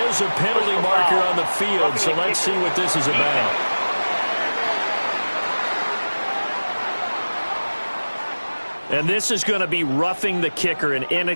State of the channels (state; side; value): inverted; both; correlation -1.00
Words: is a penalty marker on the field, so let's see what this is about. And this is going to be roughing the kicker, an